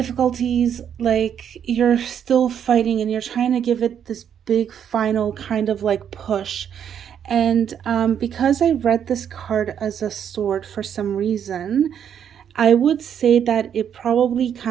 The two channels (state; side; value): quieter; left; 8.7 dB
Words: like you're still fighting and you're trying to give it this big final kind of like push. And because I read this card as a sword for some reason, I would say that it probably